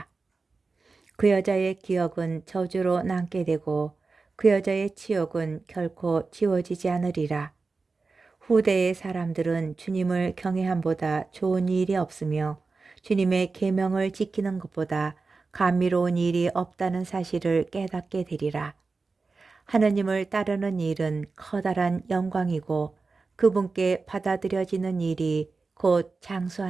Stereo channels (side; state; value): left; quieter; 4.1 dB